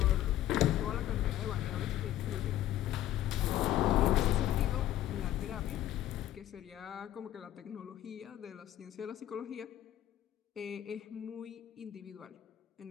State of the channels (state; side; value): quieter; right; 12.9 dB